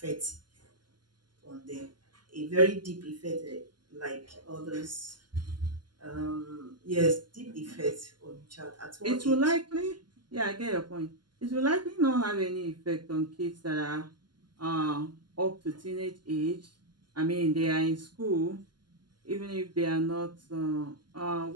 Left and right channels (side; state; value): left; late; 0.71 ms